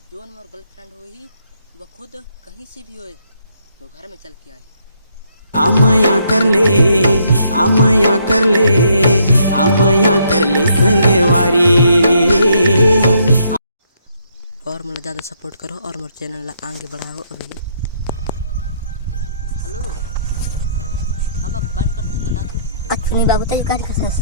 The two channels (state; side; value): inverted; both; correlation -0.71